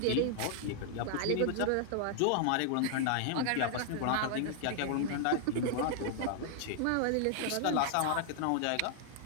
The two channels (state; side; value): different; both; correlation -0.01